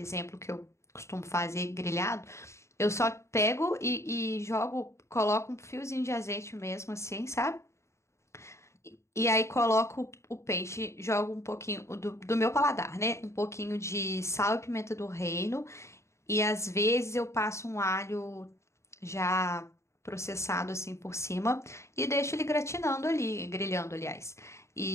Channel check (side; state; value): right; late; 0.14 ms